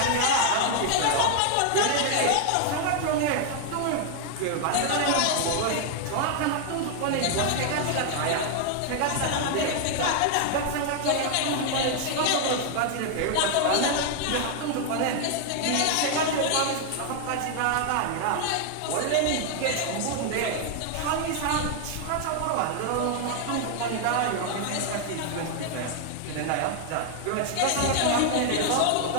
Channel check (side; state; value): both; different; correlation 0.00